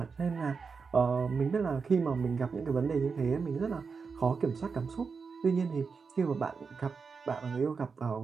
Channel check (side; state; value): left; quieter; 5.2 dB